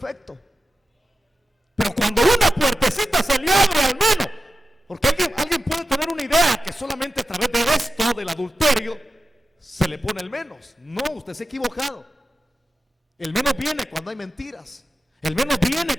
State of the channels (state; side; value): normal; both; correlation 0.92